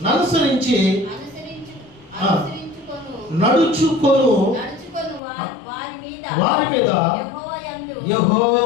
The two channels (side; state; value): right; drops out; at 5.2 s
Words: అనుసరించి నడుచుకొను వారి మీద